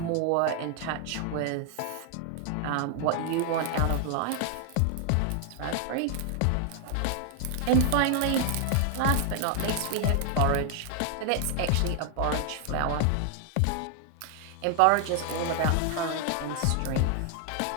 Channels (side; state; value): both; different; correlation 0.00